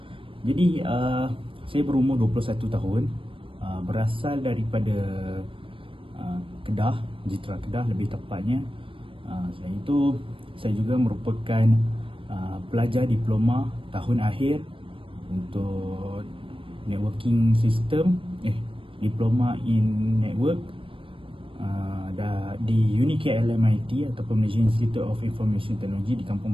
Jadi saya berumur 21 tahun, berasal daripada Kedah, Jitra Kedah lebih tepatnya. Saya juga merupakan pelajar diploma tahun akhir untuk networking system, diploma in network di UniKLMIT ataupun Malaysia Institute of Information Technology di Kampung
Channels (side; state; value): left; late; 0.25 ms